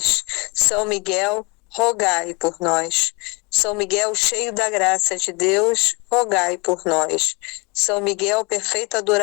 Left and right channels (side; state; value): right; quieter; 28.8 dB